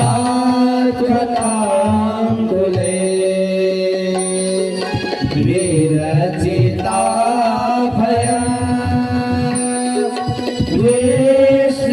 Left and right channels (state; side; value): identical; both; correlation 1.00